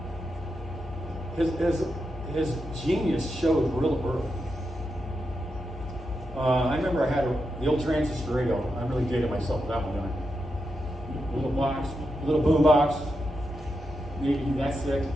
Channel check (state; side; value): normal; both; correlation 0.86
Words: his genius showed real early. I remember I had the old transistor radio. I really dated myself with that one, didn't I? Little boom box, maybe that thick.